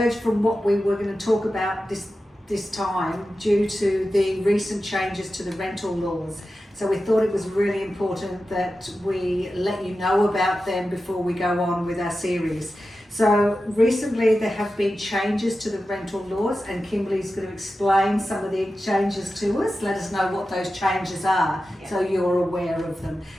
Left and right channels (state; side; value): normal; both; correlation 0.93